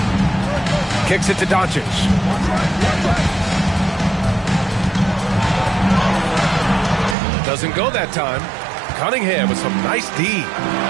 Kicks it to Doncic. Doesn't go that time. Cunningham with some nice D.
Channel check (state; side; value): drops out; left; at 7.2 s